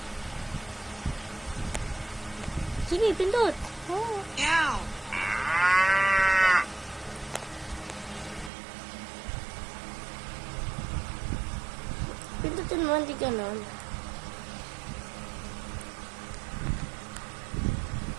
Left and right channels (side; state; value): left; drops out; at 8.5 s